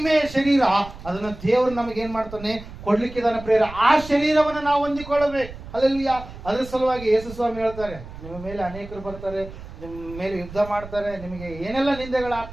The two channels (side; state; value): right; noise; rumble, 14 dB below the sound